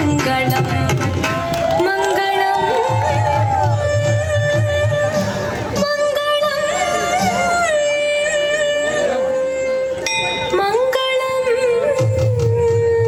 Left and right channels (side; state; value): both; identical; correlation 1.00